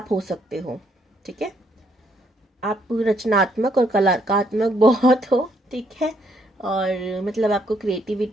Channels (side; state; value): both; normal; correlation 0.71